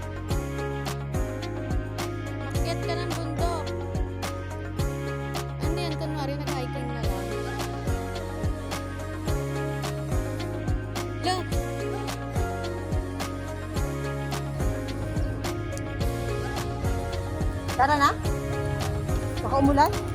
Makyat ka ng bundok. Ano yan? Kunwari nag-hiking na lang. Look! Tara na? Baka umulan?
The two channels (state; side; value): identical; both; correlation 1.00